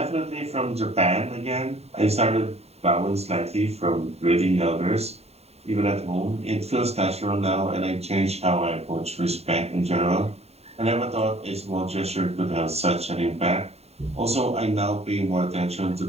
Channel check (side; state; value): left; late; 0.30 ms